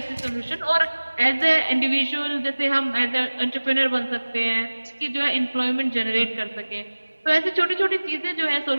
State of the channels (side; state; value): both; inverted; correlation -1.00